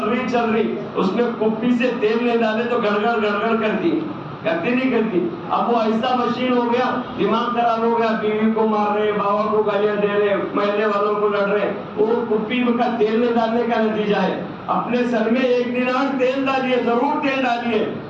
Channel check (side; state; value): both; identical; correlation 1.00